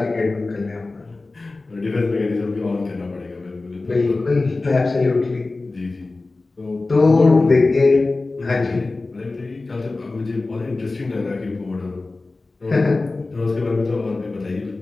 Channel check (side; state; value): right; quieter; 3.4 dB